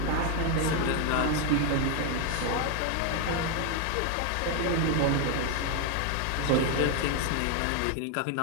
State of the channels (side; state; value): both; different; correlation 0.01